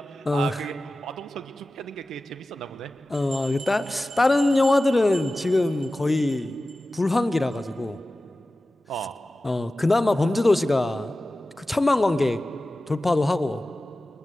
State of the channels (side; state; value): both; normal; correlation 0.95